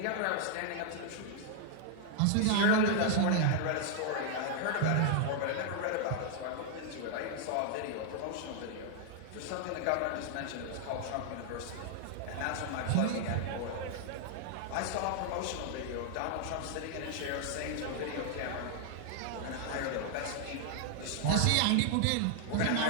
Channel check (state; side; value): different; both; correlation 0.00